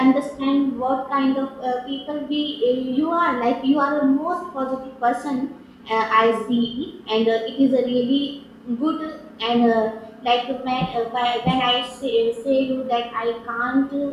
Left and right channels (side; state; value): both; identical; correlation 1.00